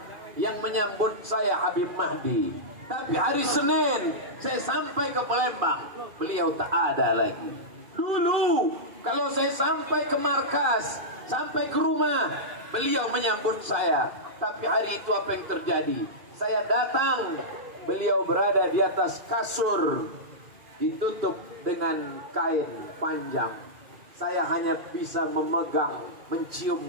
yang menyambut saya Habib Mahdi. Tapi hari Senin saya sampai ke Palembang, beliau tak ada lagi. Dulu kalau saya sampai ke markas, sampai ke rumah, beliau menyambut saya. Tapi hari itu apa yang terjadi? Saya datang, beliau berada di atas kasur, ditutup dengan kain panjang. Saya hanya bisa memegang, mencium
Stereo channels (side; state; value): left; late; 2.3 ms